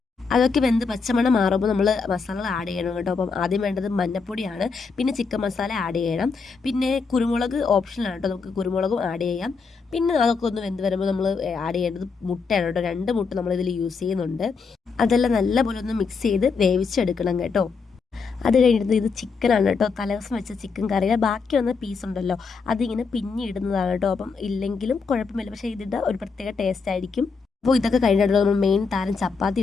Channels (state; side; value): quieter; right; 5.0 dB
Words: അതൊക്കെ വെന്ത് പച്ചമണം മാറുമ്പോൾ നമ്മൾ മസാലകൾ ആഡ് ചെയ്യണം കേട്ടോ. അപ്പം ആദ്യം വേണ്ടത് മഞ്ഞപ്പൊടിയാണ്, പിന്നെ ചിക്കൻ മസാല ആഡ് ചെയ്യണം, പിന്നെ കുരുമുളക് ഓപ്ഷനാണ് കേട്ടോ, നമുക്ക് കുരുമുളകും ആഡ് ചെയ്യാം. പിന്നെ അതൊക്കെ ഒന്ന് വെന്ത് വരുമ്പോൾ നമ്മൾ ആഡ് ചെയ്യേണ്ടത് മുട്ടയാണ് കേട്ടോ. 2 മുട്ട നമ്മളിതിൽ യൂസ് ചെയ്യുന്നുണ്ട്. അതെല്ലാം നല്ലപോലെ ഒന്ന് മിക്സ് ചെയ്ത് വേവിച്ചെടുക്കണം കേട്ടോ. അത് കഴിഞ്ഞിട്ട് ഇത് ചിക്കനാണ് കേട്ടോ, തലേദിവസം വെച്ച ചിക്കൻ കറിയുടെ ബാക്കി വന്ന പീസ് ഉണ്ടല്ലോ, അതിങ്ങനെ പിന്നിടുന്നതാണ് കേട്ടോ. അപ്പം ഇല്ലെങ്കിലും കുഴപ്പമില്ല, പക്ഷേ ഇതിൻ്റെ ഒരു പ്രത്യേക ടേസ്റ്റ് ആയിരിക്കും. അപ്പോൾ ഇതൊക്കെ കഴിഞ്ഞിട്ട് നമ്മൾ മെയിൻ താരം ചപ്പാത്തി